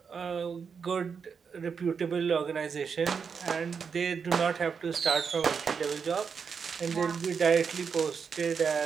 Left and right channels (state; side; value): quieter; left; 6.1 dB